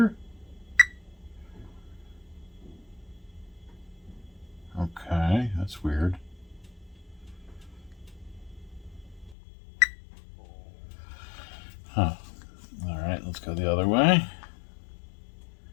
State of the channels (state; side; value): drops out; right; at 9.3 s